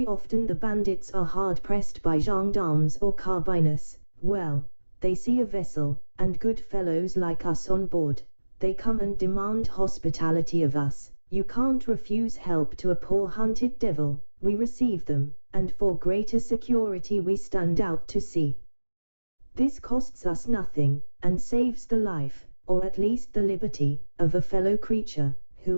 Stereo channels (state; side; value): inverted; both; correlation -1.00